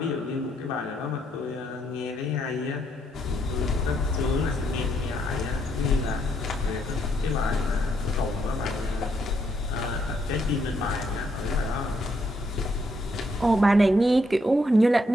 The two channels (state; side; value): normal; both; correlation 0.75